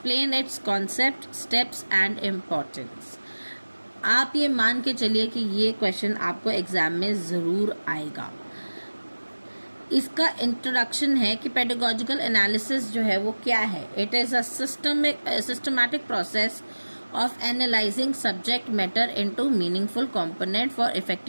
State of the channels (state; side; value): inverted; both; correlation -1.00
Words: it's concept, steps and importance. आप ये मान के चलिए कि ये क्वेश्चन आपको एग्जाम में ज़रूर आएगा। इसका इंट्रोडक्शन है कि पेडागोजिकल एनालिसिस जो है वो क्या है। It is a systematic process of analyzing subject matter into meaningful component for